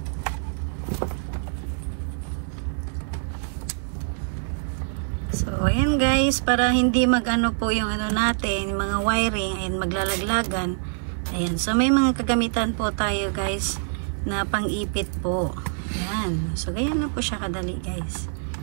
So, ayan guys, para hindi magano po yung ano natin, mga wiring, ayan, maglalaglagan. Ayan. So, may mga kagamitan po tayo guys, na pang-ipit po. Ayan. So, ganyan lang po siya kadali guys.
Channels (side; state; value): left; silent; 62 dB below the other